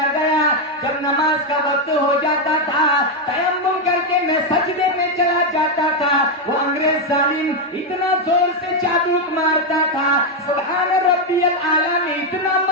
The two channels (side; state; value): both; normal; correlation 0.04